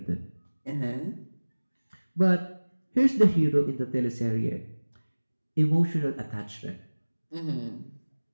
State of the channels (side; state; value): both; inverted; correlation -1.00